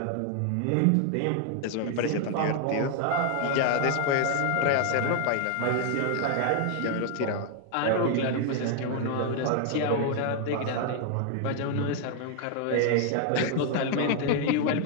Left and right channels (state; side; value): different; both; correlation 0.00